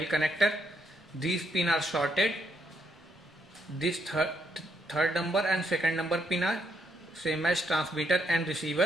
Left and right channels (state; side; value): normal; both; correlation 0.75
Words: connector, these pins are shorted. This third number and second number pin are same as transmitter and